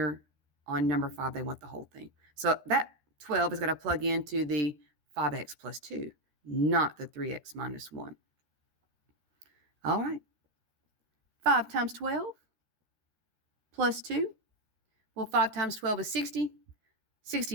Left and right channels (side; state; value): left; late; 13 ms